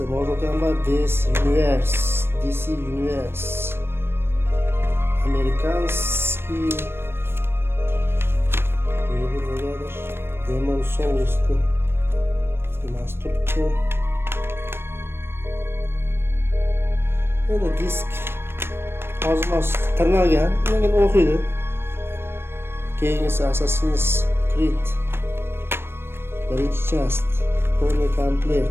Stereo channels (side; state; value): left; late; 0.12 ms